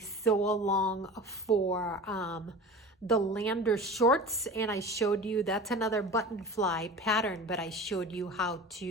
along for the Lander shorts, and I showed you that's another button fly pattern, but I showed you how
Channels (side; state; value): both; normal; correlation 0.35